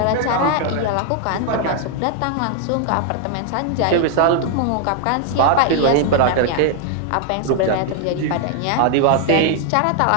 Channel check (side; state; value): both; different; correlation 0.00